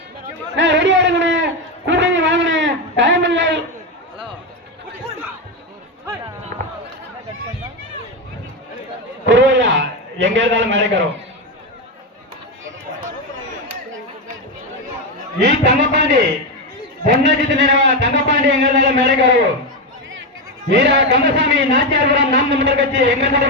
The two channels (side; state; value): both; normal; correlation 0.11